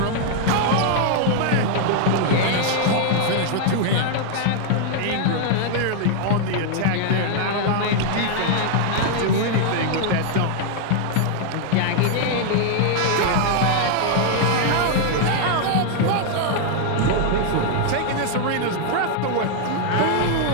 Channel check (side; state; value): both; different; correlation 0.00